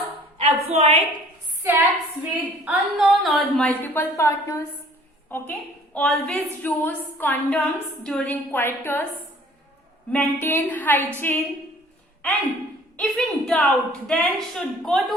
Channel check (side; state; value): both; normal; correlation 0.52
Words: avoid sex with unknown or multiple partners. Okay, always use condoms during coitus. Maintain hygiene, and if in doubt, then should go